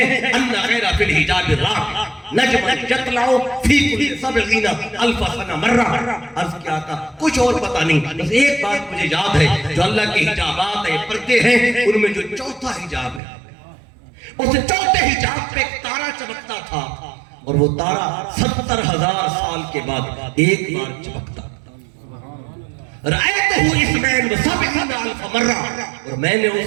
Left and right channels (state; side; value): drops out; left; at 13.2 s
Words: ان غیر فی الحجاب الراہ نجم یطلع فی کل 70 الف سنہ مرہ۔ عرض کیا کا کچھ اور پتہ نہیں، بس ایک بات مجھے یاد ہے، جو اللہ کے حجابات ہیں پردے ہیں، ان میں جو چوتھا حجاب ہے، اس چوتھے حجاب پہ ایک تارا چمکتا تھا، اور وہ تارا 70,000 سال کے بعد ایک بار چمکتا۔ رأیتہ اثنین و سبعین الف مرہ، اور میں نے